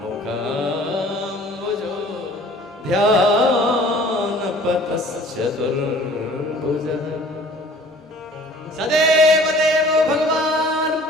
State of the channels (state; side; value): normal; both; correlation 0.50